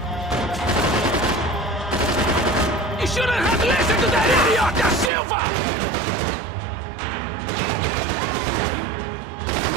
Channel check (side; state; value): left; drops out; at 5.1 s